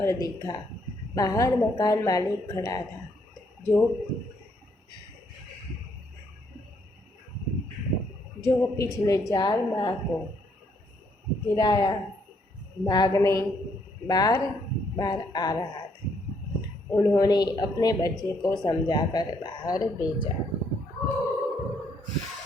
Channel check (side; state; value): both; normal; correlation 0.71